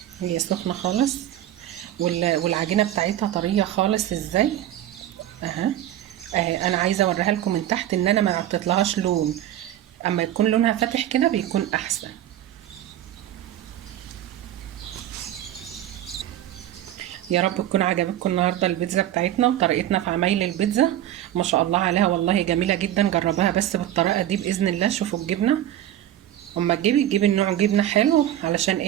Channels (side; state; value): left; quieter; 12.3 dB